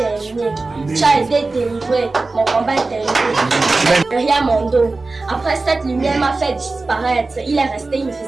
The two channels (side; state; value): left; quieter; 3.5 dB